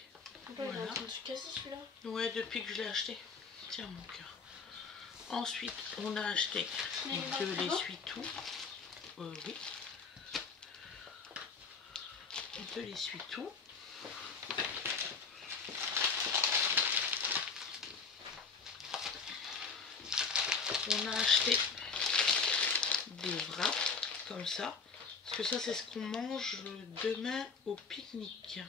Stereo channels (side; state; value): right; quieter; 5.1 dB